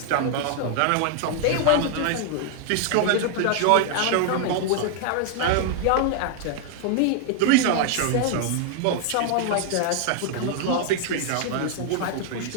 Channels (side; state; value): both; different; correlation 0.00